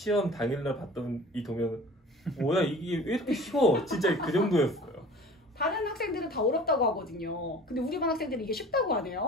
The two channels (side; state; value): both; normal; correlation 0.43